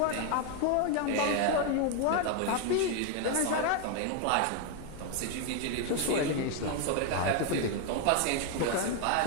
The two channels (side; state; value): both; different; correlation 0.01